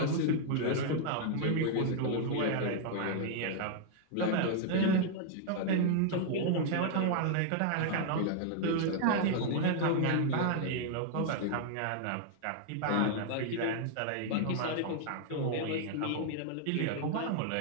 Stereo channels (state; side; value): different; both; correlation 0.00